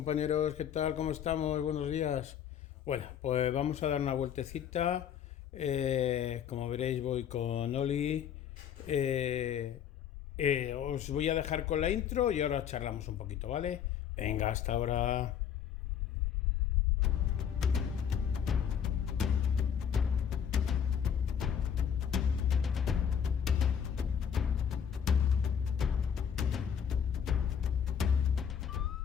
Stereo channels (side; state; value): right; quieter; 8.4 dB